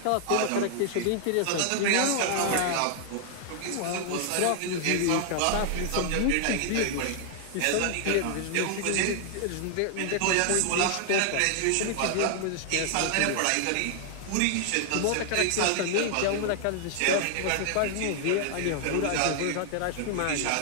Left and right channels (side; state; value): both; different; correlation -0.01